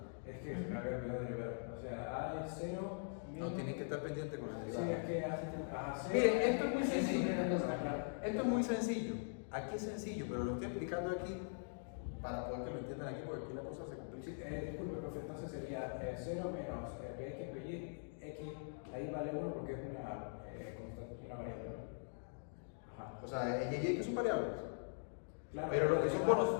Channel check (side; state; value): right; silent; digital silence